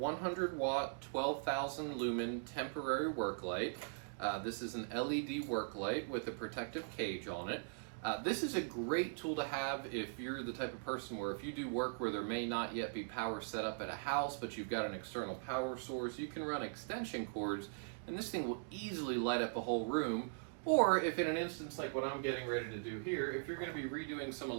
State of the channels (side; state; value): left; silent; digital silence